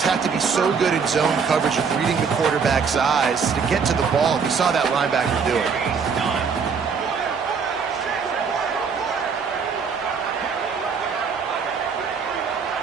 have to be so good in zone coverage of reading the quarterback's eyes to get to the ball. We saw that linebacker do it.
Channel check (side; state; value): left; quieter; 5.8 dB